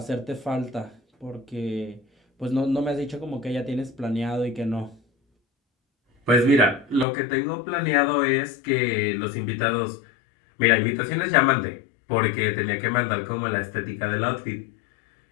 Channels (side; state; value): right; drops out; at 7.1 s